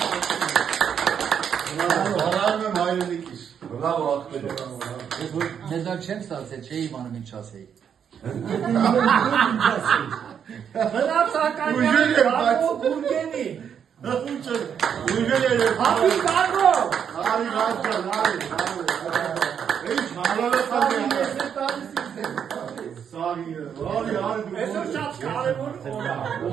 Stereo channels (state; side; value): quieter; left; 8.0 dB